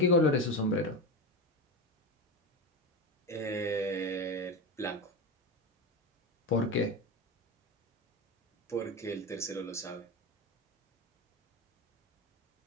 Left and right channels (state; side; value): normal; both; correlation 0.19